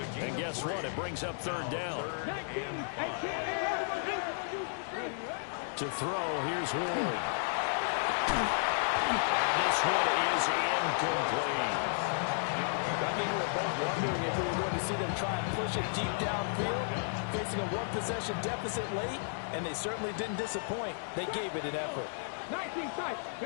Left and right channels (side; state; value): right; silent; digital silence